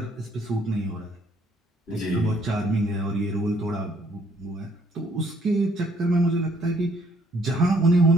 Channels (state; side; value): normal; both; correlation 0.66